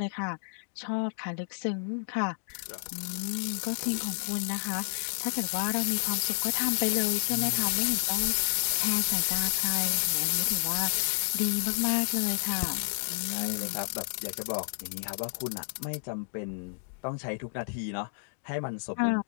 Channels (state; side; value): silent; right; digital silence